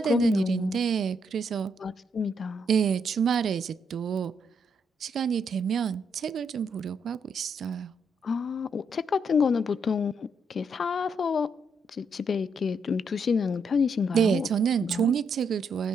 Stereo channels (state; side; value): normal; both; correlation 0.76